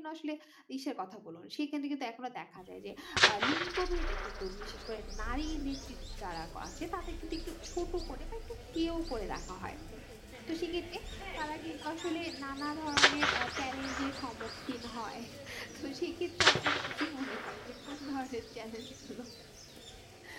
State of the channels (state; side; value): identical; both; correlation 1.00